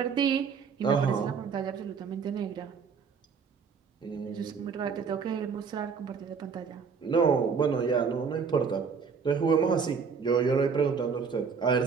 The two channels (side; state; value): left; quieter; 5.8 dB